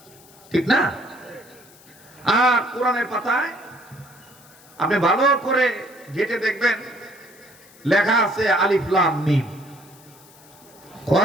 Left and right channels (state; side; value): noise; left; hiss, 25 dB below the sound